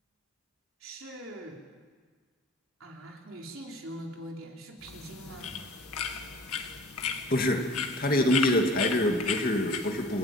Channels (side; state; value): both; normal; correlation 0.45